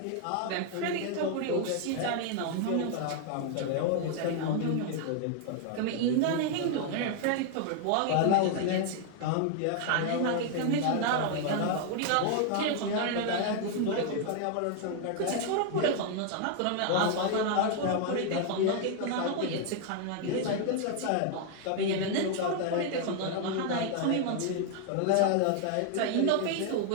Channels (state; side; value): different; both; correlation 0.00